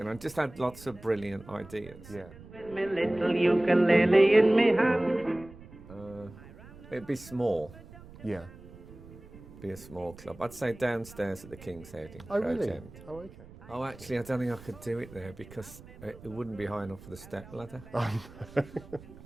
and just had lots of brilliant ideas. Yeah. With me little ukulele in me hand. It'd be small. Yeah. be a small club. I'd say downstairs at the King's Head in Oh, Crouch really? End. Oh, okay. Oh, actually, I don't think I could do it there because it wouldn't be high enough for the step ladder.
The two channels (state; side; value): noise; right; rumble, 19 dB below the sound